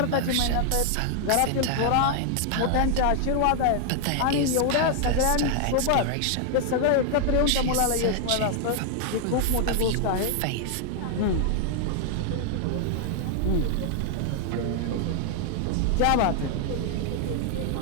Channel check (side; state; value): both; different; correlation 0.00